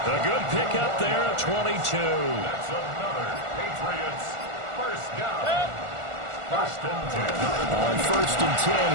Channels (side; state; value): left; late; 1.4 ms